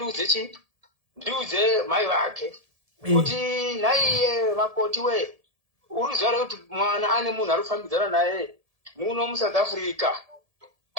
chii ndiudze mai vake kuti naiye makoti we uruziva kuti mwana ane munhu arikufambidzana naye muno muSouth Africa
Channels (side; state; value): left; late; 1.7 ms